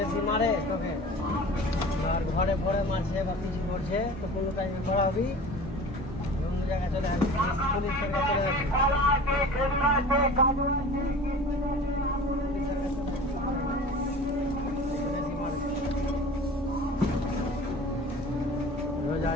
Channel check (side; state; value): both; normal; correlation 0.40